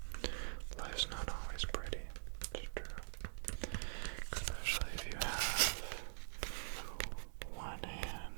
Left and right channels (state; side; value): silent; left; digital silence